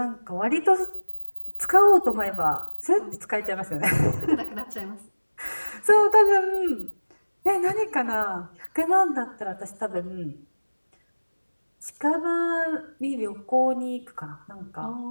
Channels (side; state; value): both; inverted; correlation -1.00